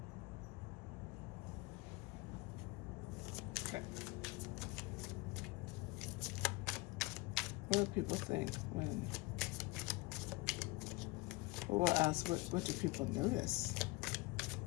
Okay. What do people think when... Well, we'll ask, what do people notice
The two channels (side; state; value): right; quieter; 22.6 dB